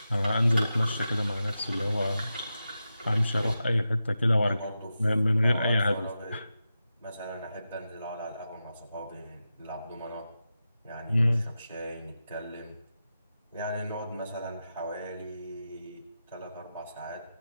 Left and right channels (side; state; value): both; inverted; correlation -0.91